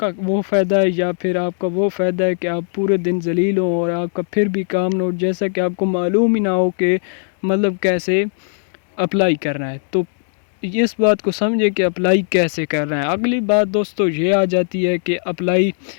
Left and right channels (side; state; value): right; silent; digital silence